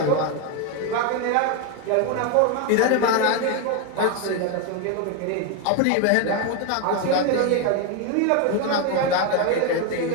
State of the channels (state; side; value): different; both; correlation 0.01